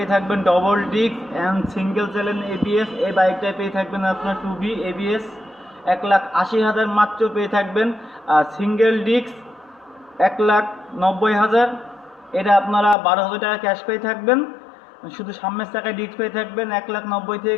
থাকবেন double disc and single channel ABS. এই বাইকটায় পেয়ে থাকবেন আপনার 2B এবিএস 1,80,000 মাত্র পেয়ে থাকবেন। আর সিঙ্গেল ডিস্ক 1,90,000, এটা আপনারা 12,000 টাকা ক্যাশ পেয়ে থাকবেন। শুধু সামনের চাকায় ডিস্ক পেয়ে থাকবেন 1,90,000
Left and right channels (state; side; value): drops out; right; at 13.0 s